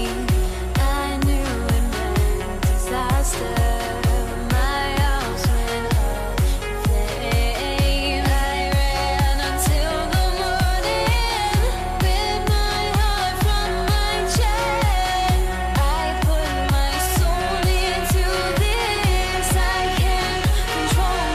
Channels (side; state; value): both; identical; correlation 1.00